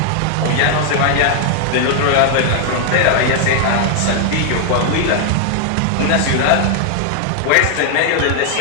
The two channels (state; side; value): different; both; correlation 0.00